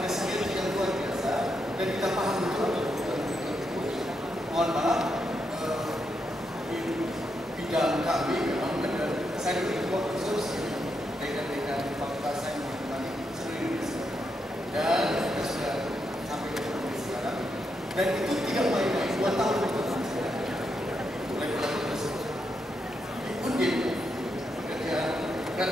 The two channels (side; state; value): both; normal; correlation 0.82